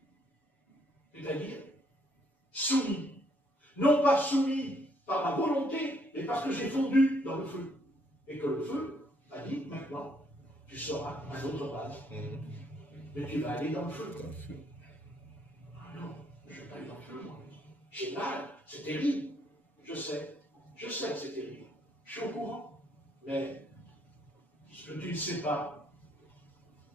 C'est-à-dire soumis. Non pas soumis par ma volonté, mais parce que j'ai fondu dans le feu. Et que le feu a dit, maintenant, tu seras un autre vase. Mais tu vas aller dans le feu. Dans le feu. Ah non, je ne vais pas aller dans le feu, moi. J'ai mal, c'est terrible. Je sais que c'est terrible. Je suis au courant. Mais ce que tu ne sais pas,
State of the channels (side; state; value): right; late; 7.0 ms